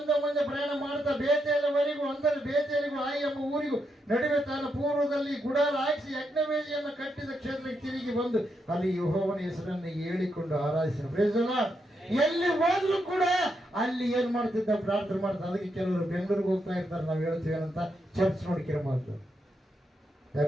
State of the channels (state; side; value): normal; both; correlation 0.81